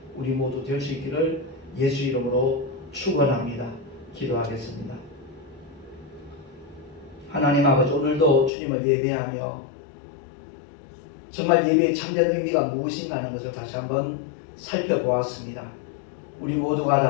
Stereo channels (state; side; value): drops out; right; at 8.5 s